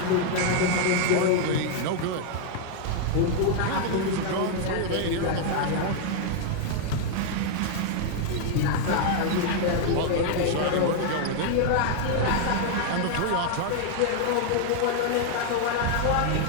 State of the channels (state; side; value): different; both; correlation 0.00